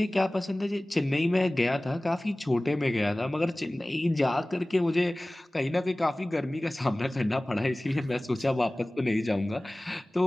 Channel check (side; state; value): both; normal; correlation 0.98